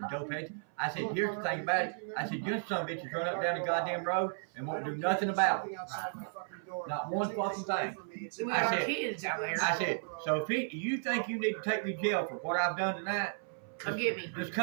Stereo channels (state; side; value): silent; left; 55 dB below the other